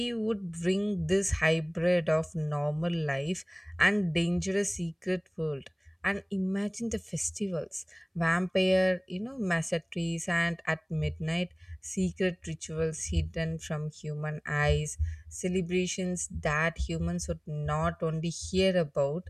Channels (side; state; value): both; identical; correlation 1.00